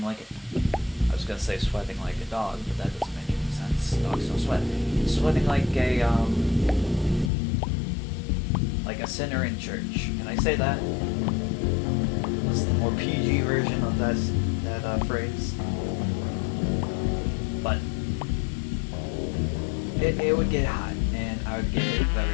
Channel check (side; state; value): right; drops out; at 7.3 s